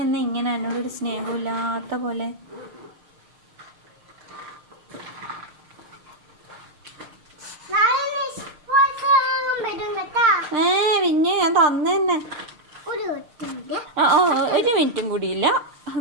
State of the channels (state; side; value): late; left; 6.6 ms